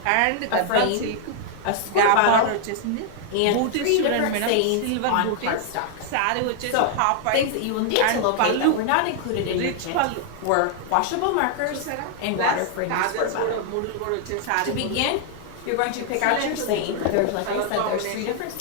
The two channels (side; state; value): both; different; correlation 0.00